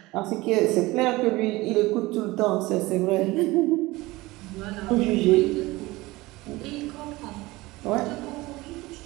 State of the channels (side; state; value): left; quieter; 20.4 dB